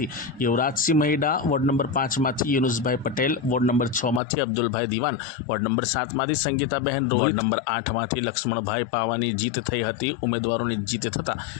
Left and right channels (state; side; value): drops out; right; at 4.2 s